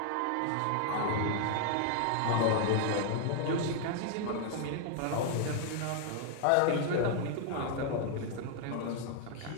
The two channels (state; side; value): different; both; correlation 0.00